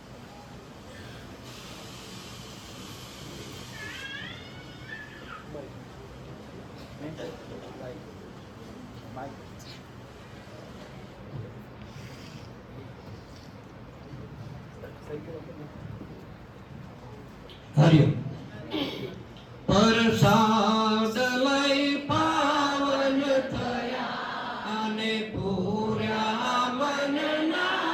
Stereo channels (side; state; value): both; identical; correlation 1.00